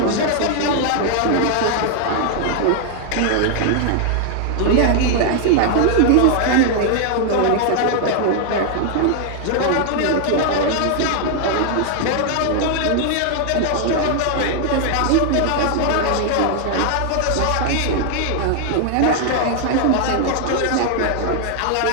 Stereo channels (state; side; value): different; both; correlation 0.00